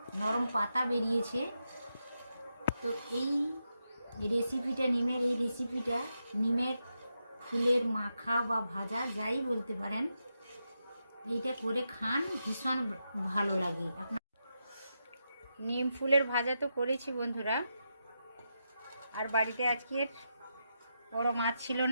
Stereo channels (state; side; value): inverted; both; correlation -0.85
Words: নরম পাতা বেরিয়েছে। তো এই রেসিপিটা, নিমের এই রেসিপিটা, নিমের ফুলের মাখা বা ভাজা যাই বলতে পারেন, এইটা করে খান, ভীষণ ভালো লাগে। আপনার নিম ফুলের ভাজা তো করেছি বন্ধুরা। আর বাড়িতে আজকের বড় মাছ ছিল